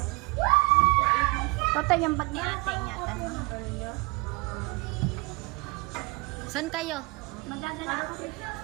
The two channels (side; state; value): left; quieter; 27.7 dB